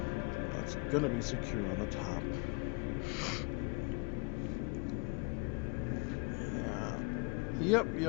That's gonna be secure on the top. Yeah.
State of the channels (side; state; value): right; quieter; 29.8 dB